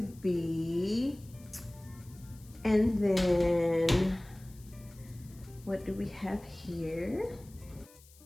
be. And then what do we have here?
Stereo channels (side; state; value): left; noise; hiss, 25 dB below the sound